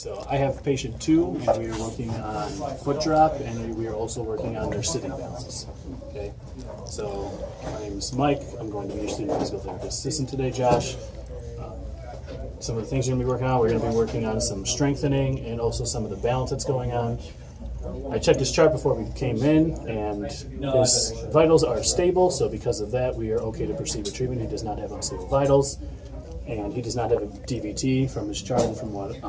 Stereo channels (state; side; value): identical; both; correlation 1.00